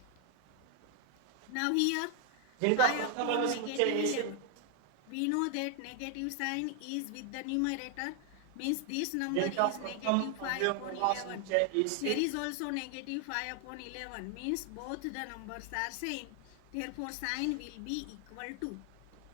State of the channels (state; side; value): different; both; correlation 0.00